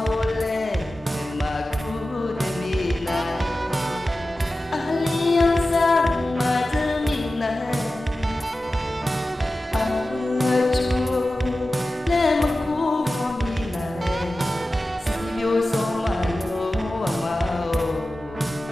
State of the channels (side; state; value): both; normal; correlation 0.95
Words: ole ma ku de mi na alianza ma de mi na